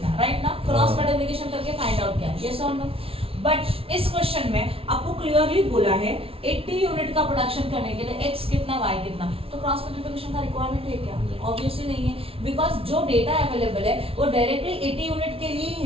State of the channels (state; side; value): late; left; 0.27 ms